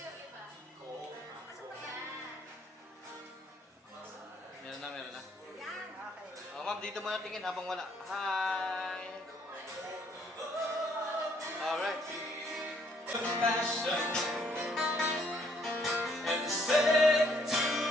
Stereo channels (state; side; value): normal; both; correlation 0.67